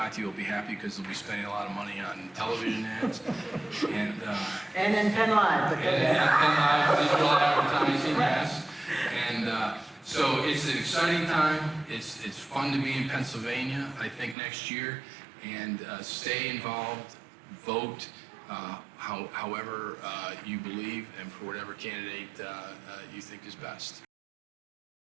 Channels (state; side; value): drops out; left; at 14.4 s